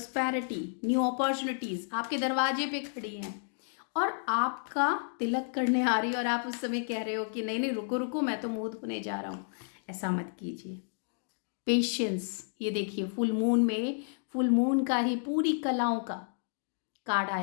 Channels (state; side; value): silent; right; digital silence